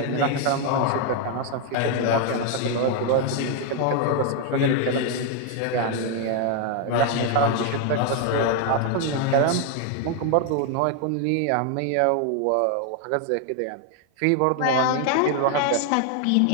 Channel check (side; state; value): both; different; correlation 0.00